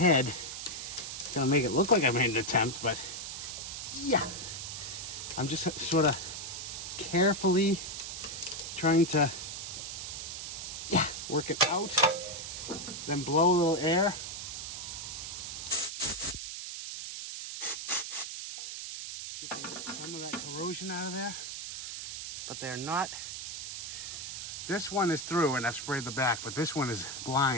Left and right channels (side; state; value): right; noise; hiss, 7 dB below the sound